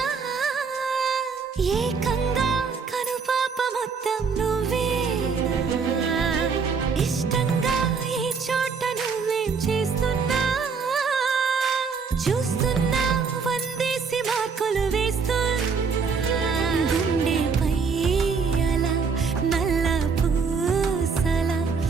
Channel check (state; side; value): quieter; left; 5.4 dB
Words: ఏకంగా కనుపాప మొత్తం నువ్వేనా ఇష్టంగా ఏ చోట నువ్వేం చేస్తున్నా చూస్తున్నా వందేసి మార్కులు వేస్తున్నా గుండెపై అలా నల్ల పూసల